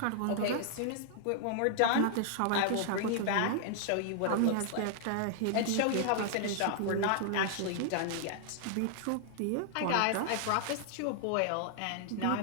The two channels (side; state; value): both; different; correlation 0.00